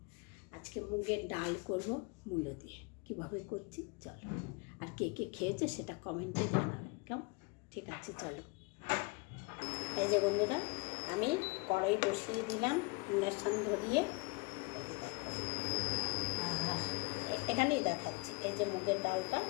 আজকে মুগের ডাল করব মূলো দিয়ে। কীভাবে করছি চলো, আর কে কে খেয়েছে সেটা কমেন্টে জানাবে। কেমন? ঠিক আছে, চলো। এই যে বন্ধুরা, আমি কড়াই বসিয়ে দিলাম ইন্ডাকশান ধরিয়ে। এই যে দেখো, আর এখানেই দেখাচ্ছি। এই যে মুগের ডালটা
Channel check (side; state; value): right; quieter; 28.7 dB